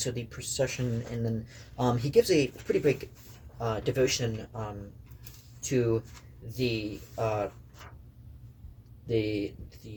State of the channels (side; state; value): both; identical; correlation 1.00